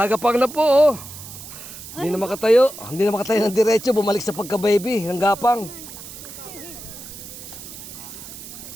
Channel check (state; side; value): noise; right; hiss, 13 dB below the sound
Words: na po oh. Hindi na makatayo. Hindi na makatayo ng diretso. Bumalik sa pagka-baby. Ang gapang.